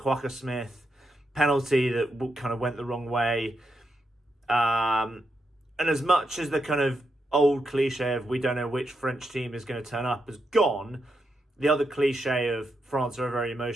Smith penalty that kind of went the wrong way. And as much as the kind of old cliche of we don't know which French team is going to turn up has gone, the other cliche of France are a very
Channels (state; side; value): normal; both; correlation 0.83